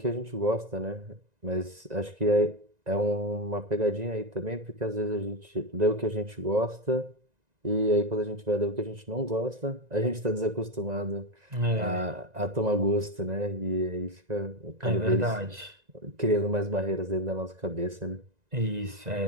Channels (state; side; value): late; left; 1.9 ms